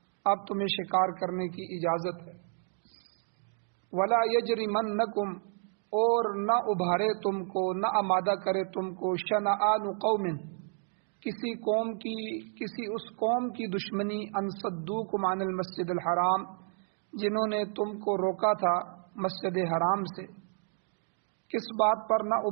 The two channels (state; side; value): silent; left; 57 dB below the other